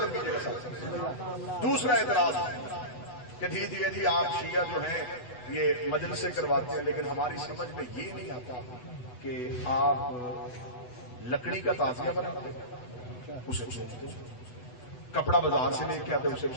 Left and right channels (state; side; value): late; right; 8.1 ms